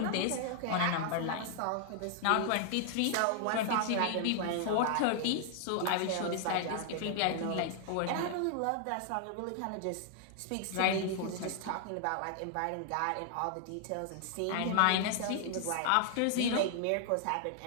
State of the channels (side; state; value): both; different; correlation -0.01